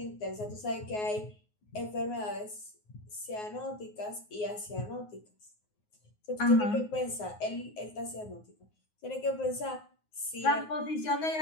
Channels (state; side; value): late; right; 9.5 ms